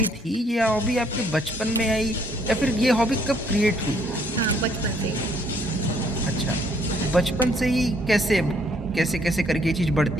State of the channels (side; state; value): both; normal; correlation 0.66